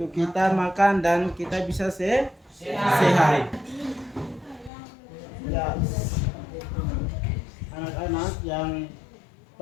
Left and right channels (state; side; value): drops out; right; at 4.7 s